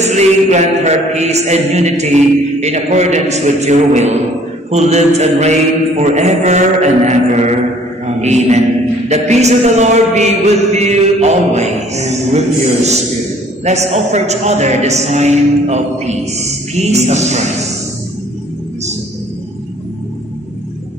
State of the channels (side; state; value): both; normal; correlation 0.56